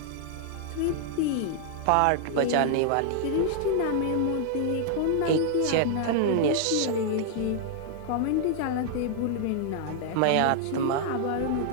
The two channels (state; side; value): different; both; correlation -0.01